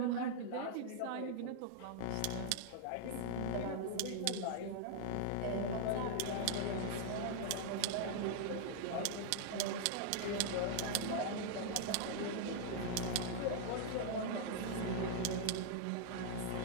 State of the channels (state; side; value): different; both; correlation -0.01